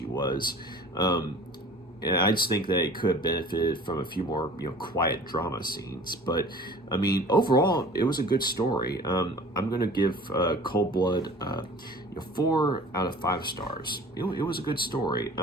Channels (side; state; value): both; normal; correlation 0.44